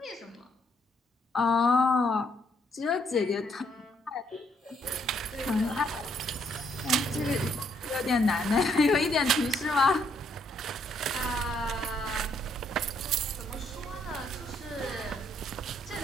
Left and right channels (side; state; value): both; normal; correlation 0.71